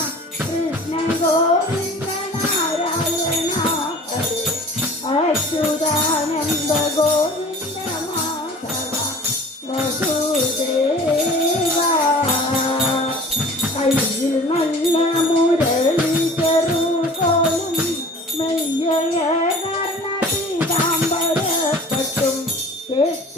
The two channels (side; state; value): both; normal; correlation 0.45